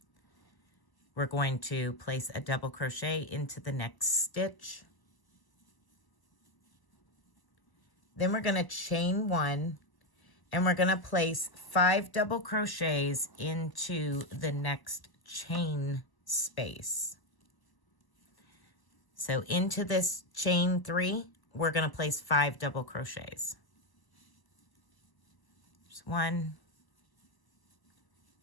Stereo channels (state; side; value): late; right; 1.0 ms